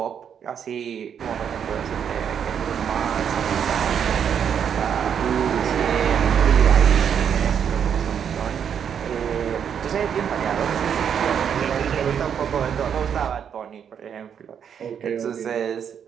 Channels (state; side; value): quieter; left; 8.0 dB